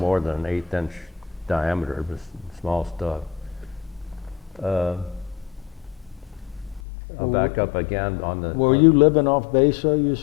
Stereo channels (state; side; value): drops out; right; at 6.8 s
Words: than an 1/8-inch diameter. It was small stuff. I'll back up again on the... Were you living off base, though, you